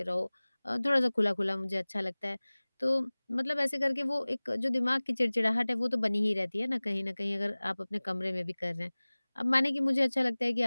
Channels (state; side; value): inverted; both; correlation -1.00